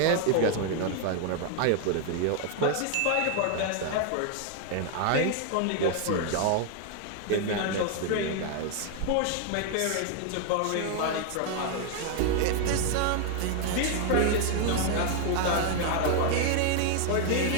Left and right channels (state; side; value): different; both; correlation 0.00